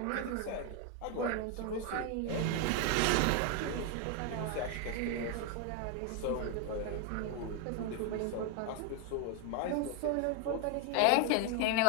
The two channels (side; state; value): both; different; correlation 0.01